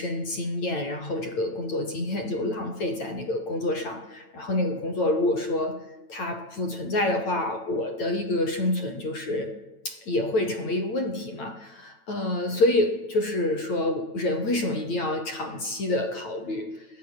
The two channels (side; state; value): right; late; 9.0 ms